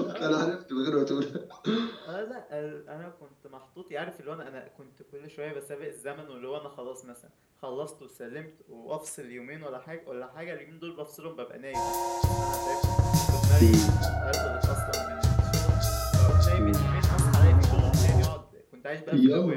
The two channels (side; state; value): both; identical; correlation 1.00